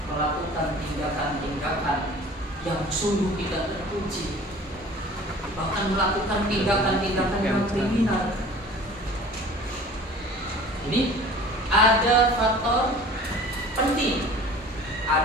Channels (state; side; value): normal; both; correlation 0.45